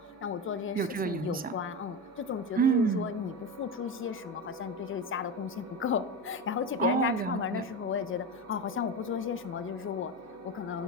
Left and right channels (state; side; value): normal; both; correlation 0.20